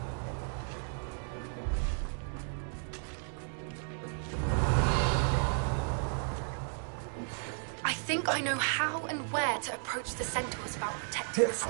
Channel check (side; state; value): left; silent; 55 dB below the other